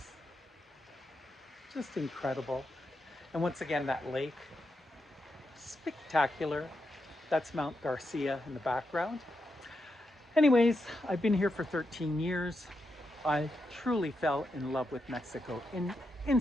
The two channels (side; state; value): both; normal; correlation 0.85